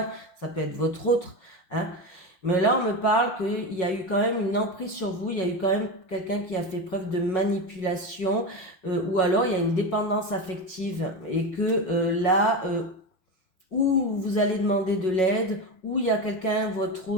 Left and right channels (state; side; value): late; right; 5.5 ms